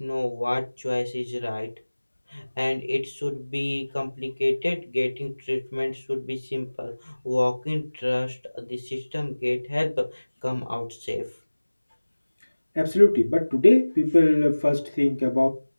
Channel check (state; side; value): inverted; both; correlation -1.00